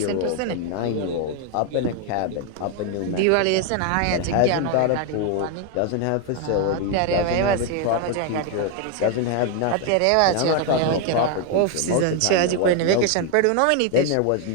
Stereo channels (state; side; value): different; both; correlation 0.01